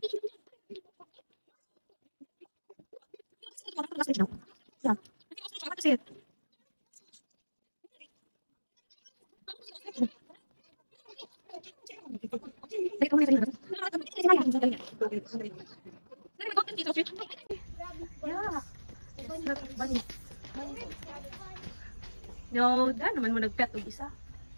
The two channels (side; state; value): both; inverted; correlation -1.00